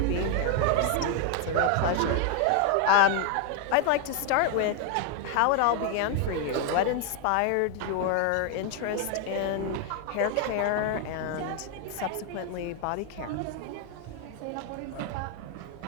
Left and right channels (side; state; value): both; different; correlation 0.01